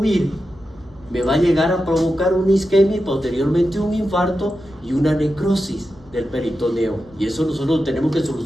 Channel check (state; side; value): noise; left; rumble, 26 dB below the sound